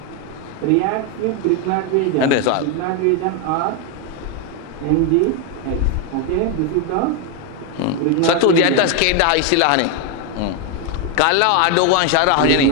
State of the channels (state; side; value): different; both; correlation 0.02